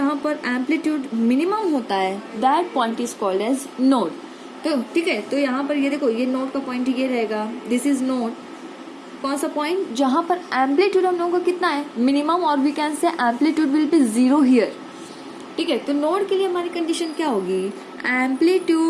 पर एम्पलीट्यूड मिनिमम होता है that point is called as node. तो ठीक है, तो यहाँ पर ये देखो, ये नोड का पॉइंट ये रहेगा, दिस इज नोड. कौन सा पॉइंट जहां पर एम्पलीट्यूड हम लोगों का कितना है, मिनिमम, और we can say amplitude will be 0 here. ठीक है, तो नोड के लिए हमारी कंडीशन क्या होगी,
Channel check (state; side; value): identical; both; correlation 1.00